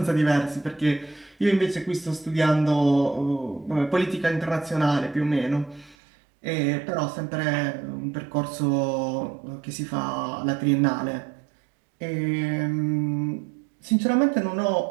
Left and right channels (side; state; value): left; drops out; at 6.0 s